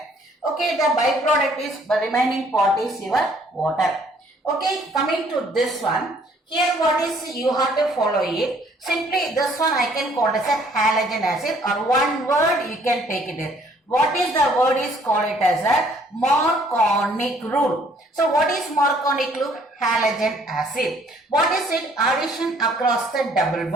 Okay, the byproduct is, the remaining part is your water. Okay, coming to this one. Here what is, you have to follow it. Simply this one I can call as a halogen acid, or one word you can take it in. What is the word is called it as a Marconic rule. So what is Marconic rule? Halogen acid. What is it? Addition across the double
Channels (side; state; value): both; normal; correlation 0.61